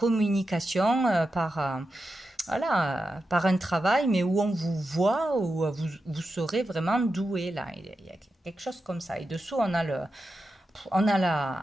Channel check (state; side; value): normal; both; correlation 0.89